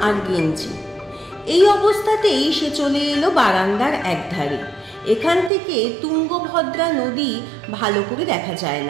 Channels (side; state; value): left; drops out; at 5.5 s